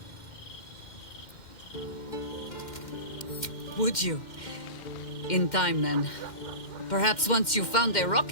Would you? In time, then. Perhaps once you found a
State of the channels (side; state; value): right; late; 2.1 ms